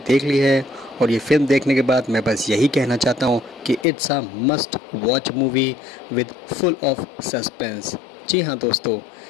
देख ली है और ये फिल्म देखने के बाद मैं बस यही कहना चाहता हूँ कि it's a must watch movie with full of suspense. जी हाँ दोस्तों,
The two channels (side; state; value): right; drops out; at 3.9 s